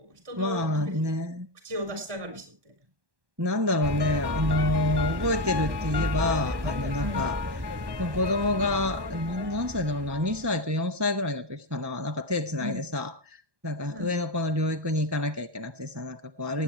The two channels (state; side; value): late; left; 1.1 ms